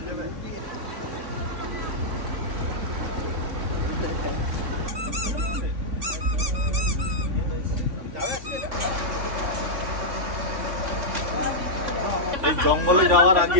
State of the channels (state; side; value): late; left; 3.6 ms